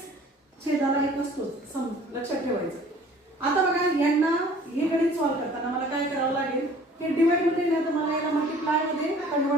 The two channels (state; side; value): normal; both; correlation 0.51